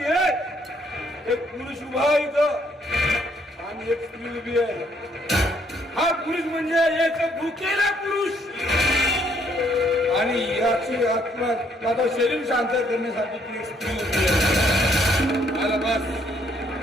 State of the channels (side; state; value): both; normal; correlation 0.68